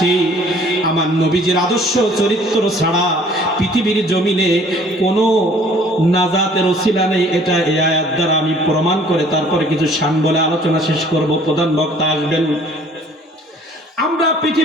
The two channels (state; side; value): normal; both; correlation 0.55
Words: আমার নবীজির আদর্শ চরিত্র ছাড়া পৃথিবীর জমিনে কোনো নাজাতের ওসিলা নেই, এটা এই আয়াত দ্বারা আমি প্রমাণ করে তারপরে কিছু শান বলে আলোচনা শেষ করব। প্রধান বক্তা আসবেন। আমরা